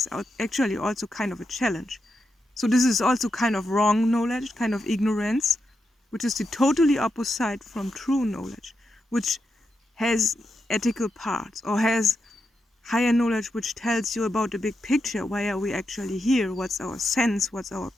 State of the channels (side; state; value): both; normal; correlation 0.86